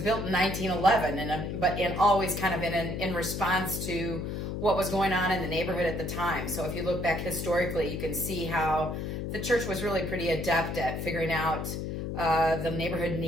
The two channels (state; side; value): noise; left; hum, 4 dB below the sound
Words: in 1911, but always kind of in response to what was going on in the neighborhood at the time. So if you look back historically, you can see how the church was really pretty adept at figuring out the neighborhood